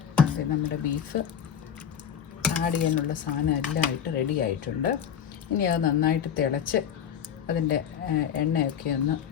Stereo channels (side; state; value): right; quieter; 8.5 dB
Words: നമ്മുടെ ബീഫ് ആഡ് ചെയ്യാനുള്ള സാധനം എല്ലാം ആയിട്ട് റെഡി ആയിട്ടുണ്ട്. ഇനി അത് നന്നായിട്ട് തിളച്ച് അതിൻ്റെ എണ്ണയൊക്കെ ഒന്ന്